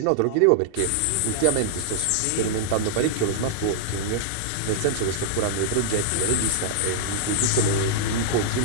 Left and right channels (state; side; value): different; both; correlation -0.01